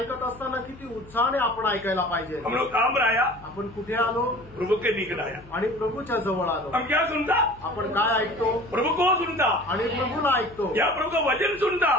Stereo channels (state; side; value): noise; left; hum, 22 dB below the sound